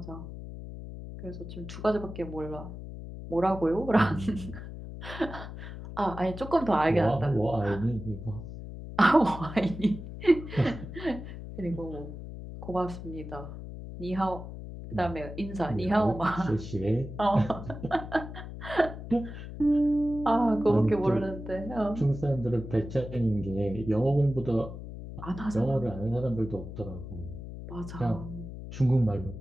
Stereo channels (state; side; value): noise; left; hum, 10 dB below the sound